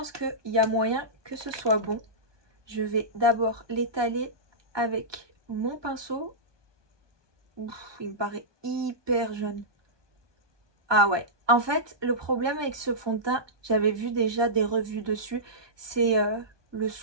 qu'il y a moyen que ce soit bon. Je vais d'abord l'étaler avec mon pinceau. Ouf, il me paraît hyper jaune. Ah ouais. En fait, le problème avec ce fond de teint, j'avais vu déjà des revues dessus, c'est le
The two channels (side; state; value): left; late; 1.2 ms